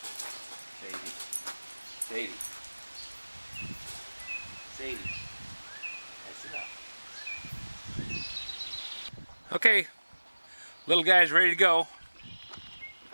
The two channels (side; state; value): both; inverted; correlation -1.00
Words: Sadie. That's enough. Okay, little guy's ready to go.